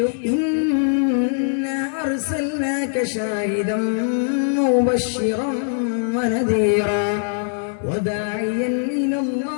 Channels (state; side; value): silent; right; digital silence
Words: ഇന്നാ അർസൽനാക ഷാഹിദൻ മുബശ്ശിറൻ വനദീറാ വദാഇയൻ